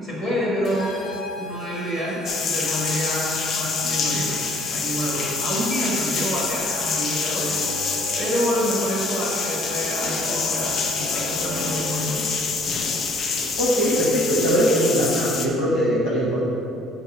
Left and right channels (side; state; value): both; normal; correlation 0.58